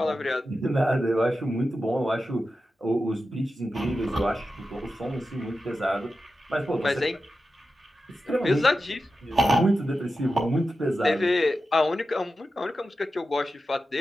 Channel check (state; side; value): normal; both; correlation 0.91